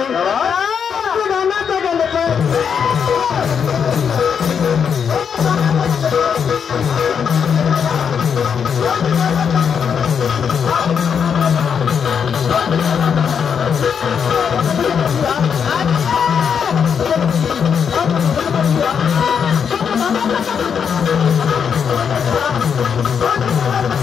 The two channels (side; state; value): right; quieter; 7.1 dB